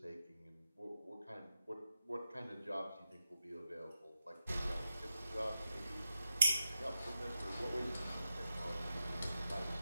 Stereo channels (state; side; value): inverted; both; correlation -0.90